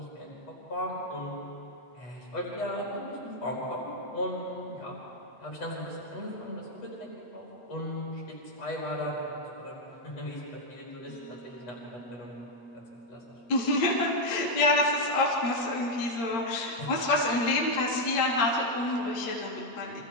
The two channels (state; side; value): late; right; 8.7 ms